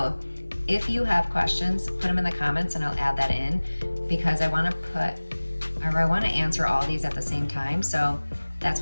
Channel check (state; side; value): inverted; both; correlation -1.00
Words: if you have questions, put them in the comments and I'll add that in, because I want to answer all these at the same time. So that's